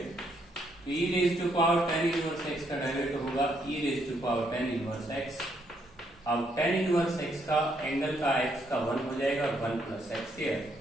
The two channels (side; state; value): both; normal; correlation 0.73